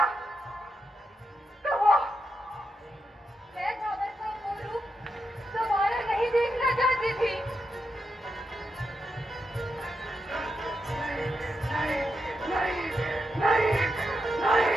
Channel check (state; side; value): normal; both; correlation 0.85